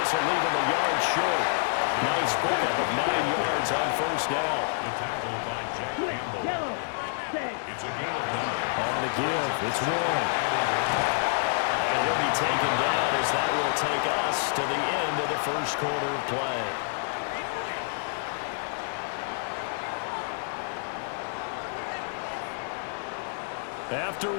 this will leave him a yard short. Nice pickup of 9 yards on first down. The tackle by Jack Campbell. It's a gain of 9. On the give, it's one. And he'll be taken down as that will take us to the end of the first quarter of play. After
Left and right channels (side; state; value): right; silent; digital silence